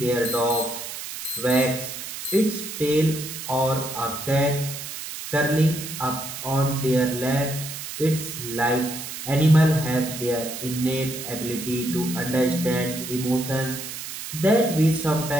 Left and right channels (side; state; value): right; noise; hiss, 8 dB below the sound